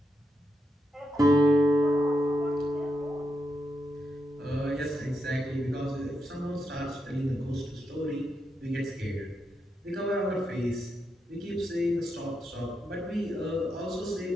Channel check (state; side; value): normal; both; correlation 0.83